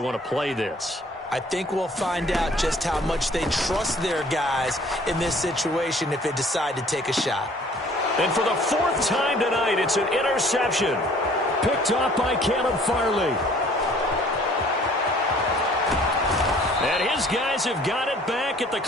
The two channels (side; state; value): both; normal; correlation 0.55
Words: to play this. I think we'll find out just how much they trust their guys in this situation if they decide to take a shot. And for the 4th time tonight, it's an interception. Picked off by Caleb Farley. And his guys have got it back at the